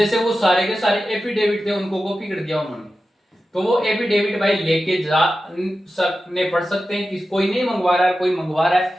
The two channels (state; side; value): normal; both; correlation 0.93